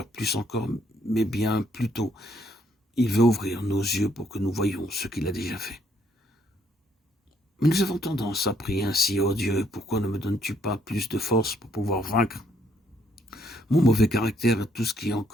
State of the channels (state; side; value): normal; both; correlation 0.70